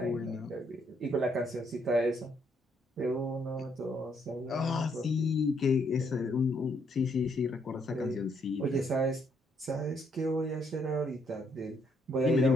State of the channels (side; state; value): both; normal; correlation 0.72